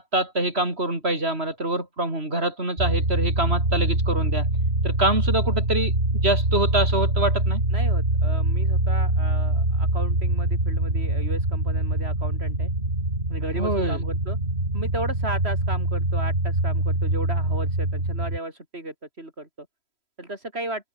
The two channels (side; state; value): left; late; 3.0 ms